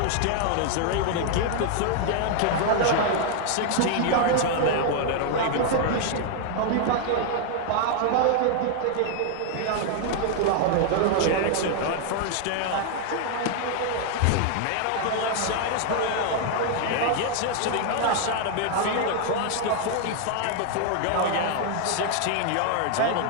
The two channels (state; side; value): different; both; correlation 0.00